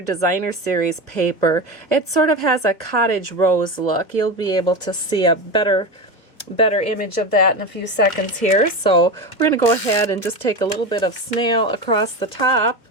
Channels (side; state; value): right; late; 2.1 ms